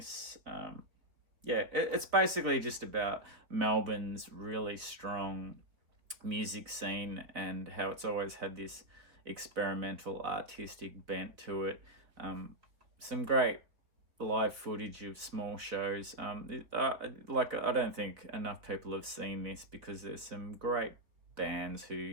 It's basically just about Melbourne's really strong music scene and how it's always had this experimental artistic bent to it. Some great live footage of small shows. I don't think enough people have seen this because there's some great bands who,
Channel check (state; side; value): late; left; 3.7 ms